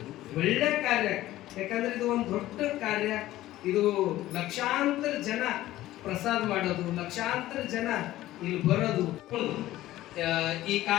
ಒಳ್ಳೆ ಕಾರ್ಯ. ಯಾಕಂದ್ರೆ ಇದು ಒಂದು ದೊಡ್ಡ ಕಾರ್ಯ. ಇದು ಲಕ್ಷಾಂತರ ಜನ ಪ್ರಸಾದ ಮಾಡೋದು, ಲಕ್ಷಾಂತರ ಜನ ಇಲ್ಲಿ ಬರೋದು. ಈ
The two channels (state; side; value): quieter; right; 15.3 dB